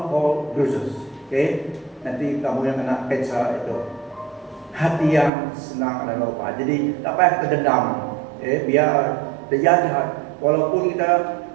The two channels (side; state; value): left; drops out; at 5.3 s